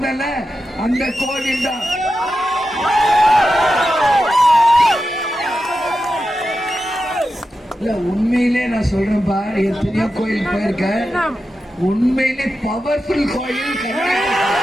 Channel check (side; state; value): both; normal; correlation 0.90